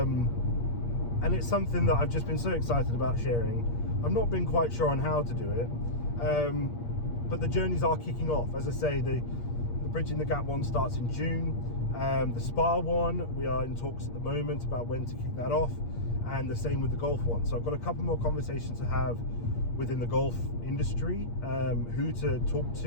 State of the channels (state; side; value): late; right; 8.5 ms